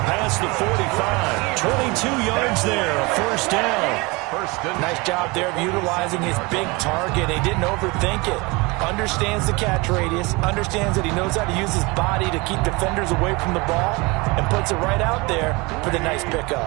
past the 45. 22 yards there, a first down. Nice job there of utilizing his big target. He didn't overthink it. Understands the catch radius, understands that he knows how to use his body to keep defenders away from the ball, and puts it right out there for the nice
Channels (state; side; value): quieter; left; 25.3 dB